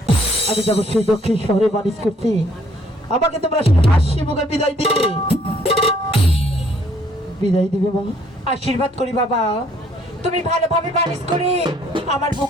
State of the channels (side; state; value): both; normal; correlation 0.63